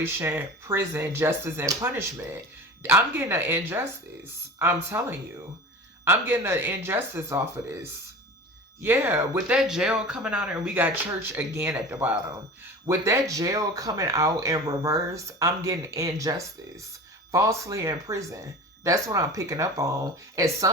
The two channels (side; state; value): both; normal; correlation 0.35